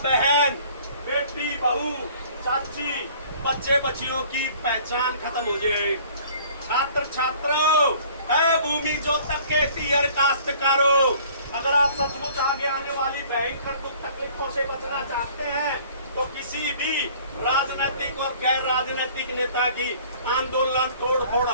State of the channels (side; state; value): both; inverted; correlation -0.52